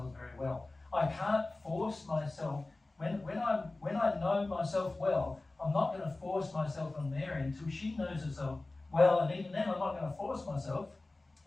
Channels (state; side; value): quieter; right; 3.1 dB